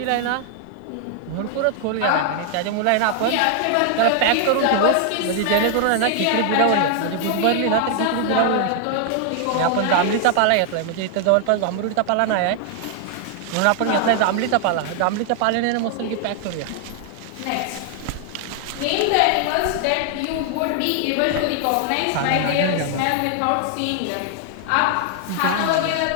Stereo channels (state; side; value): different; both; correlation 0.00